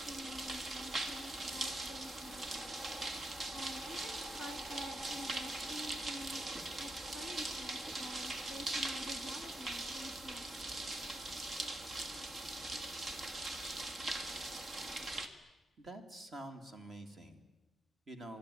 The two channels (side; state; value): both; normal; correlation 0.82